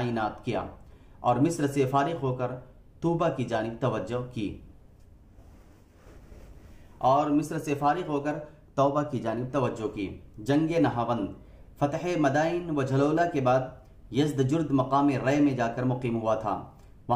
کیا اور مصر سے فارغ ہو کر طوبہ کی جانب توجہ کی۔ جنگ نہاوند فتح مدائن و جھلولہ کے بعد یزدجرد مقام رے میں جا کر مقیم ہوا تھا۔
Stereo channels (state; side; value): identical; both; correlation 1.00